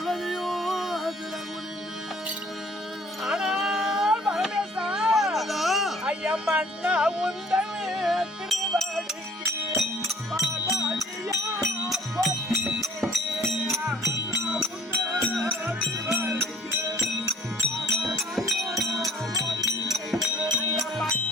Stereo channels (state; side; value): normal; both; correlation 0.55